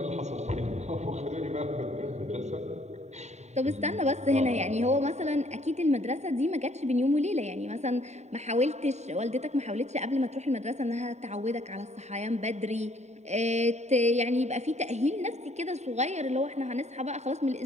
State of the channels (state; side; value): late; left; 0.32 ms